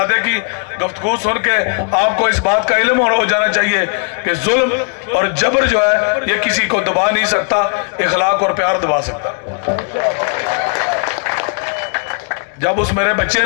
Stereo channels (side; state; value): right; quieter; 38.1 dB